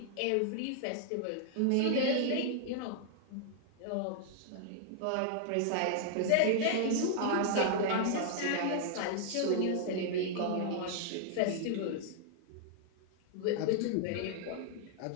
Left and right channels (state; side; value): different; both; correlation -0.01